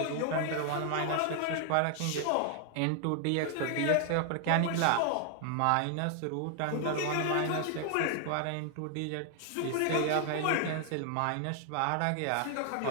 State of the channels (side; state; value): both; different; correlation 0.00